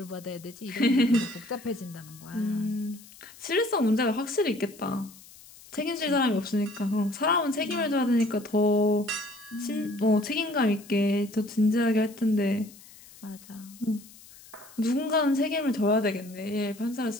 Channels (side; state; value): left; noise; hiss, 21 dB below the sound